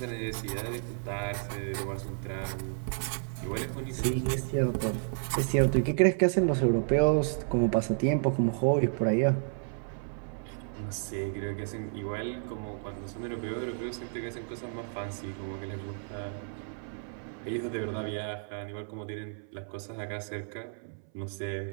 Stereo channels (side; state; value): left; silent; 57 dB below the other